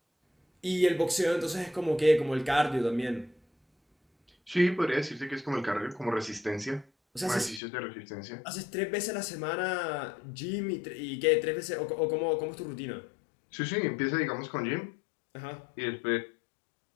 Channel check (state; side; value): drops out; right; at 7.6 s